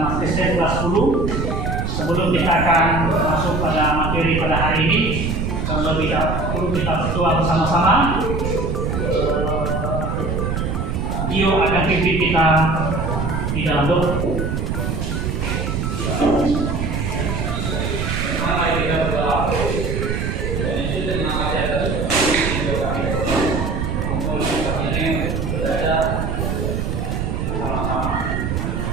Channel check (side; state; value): right; noise; rumble, 1 dB below the sound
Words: Kristen kelas 10. Sebelum kita akan masuk pada materi pada hari ini, terlebih dahulu kita berdoa bersama-sama. Dio akan pimpin kita di dalam doa.